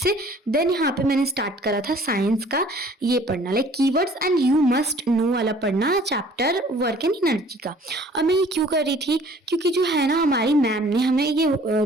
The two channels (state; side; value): normal; both; correlation 0.53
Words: देन यहाँ पे मैंने स्टार्ट करा था साइंस का ये पढ़ना, like keywords and you must know वाला पढ़ना, चैप्टर वर्क एंड एनर्जी का। और मैं ये क्यों कर रही थी, क्योंकि जो है ना हमारी मैम ने हमें ये